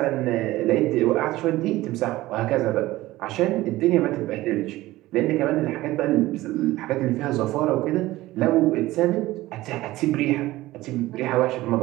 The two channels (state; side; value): quieter; left; 17.4 dB